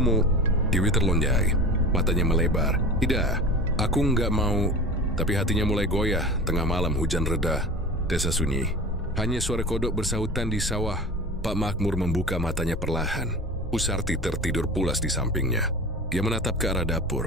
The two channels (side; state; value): both; normal; correlation 0.34